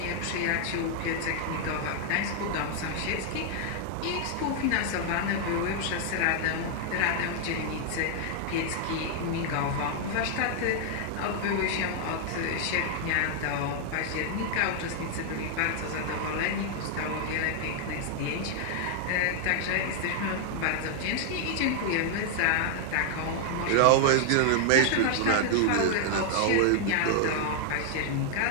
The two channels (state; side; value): different; both; correlation 0.00